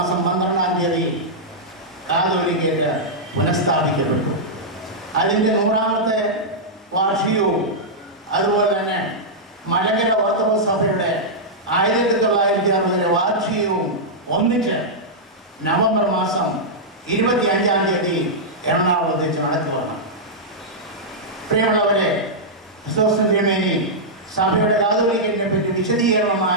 12-ാം തീയതി കാതോലിക്കേറ്റ് പുനഃസ്ഥാപിക്കപ്പെട്ടു. അതിൻ്റെ 100ാമത്തെ വാർഷികവും അതുപോലെ തന്നെ മലങ്കര ഓർത്തഡോക്സ് സഭയുടെ 1960 വാർഷികവും ഒന്നിച്ച് നവംബർ മാസം 25-ാം തീയതി എറണാകുളത്ത് വെച്ച് നടത്തുകയാണ്. പ്രിയമുള്ളവരെ, ക്രിസോസ്റ്റം തിരുമേനി സഭയുടെ കാതോലിക്കറ്റിനെ പറ്റി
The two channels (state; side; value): normal; both; correlation -0.09